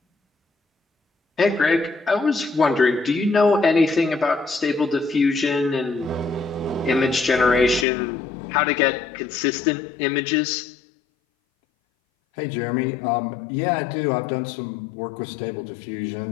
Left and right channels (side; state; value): right; drops out; at 7.9 s